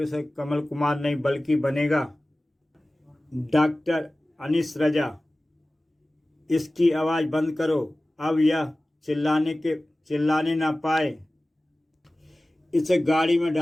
कमल कुमार नहीं बल्कि बनेगा डॉक्टर अनीस रजा। इसकी आवाज़ बंद करो, अब यह चिल्लाने ना पाए। इसे गाड़ी में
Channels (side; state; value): both; normal; correlation 0.97